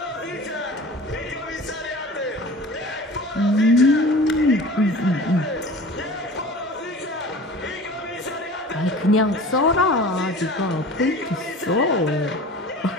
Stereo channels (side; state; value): both; normal; correlation 0.40